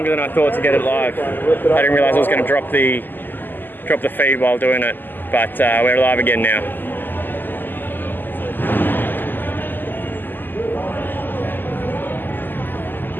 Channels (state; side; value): late; right; 0.090 ms